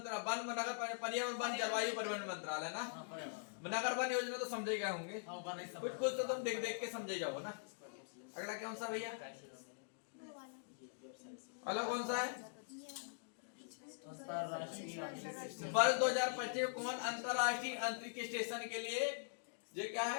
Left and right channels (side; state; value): right; silent; digital silence